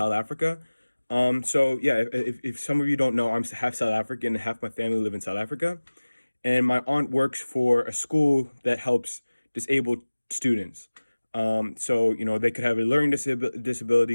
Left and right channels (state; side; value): inverted; both; correlation -1.00